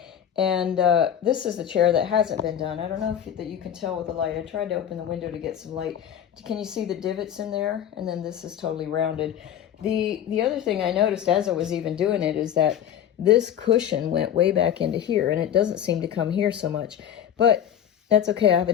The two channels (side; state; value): right; quieter; 9.8 dB